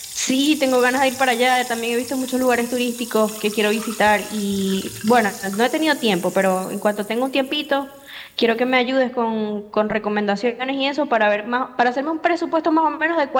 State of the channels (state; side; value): identical; both; correlation 1.00